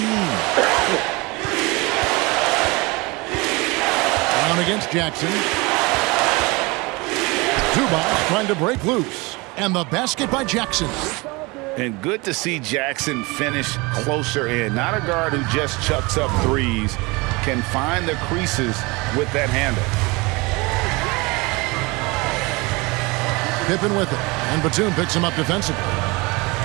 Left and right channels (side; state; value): left; quieter; 25.2 dB